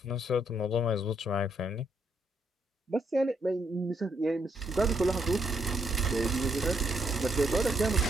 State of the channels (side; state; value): both; normal; correlation 0.74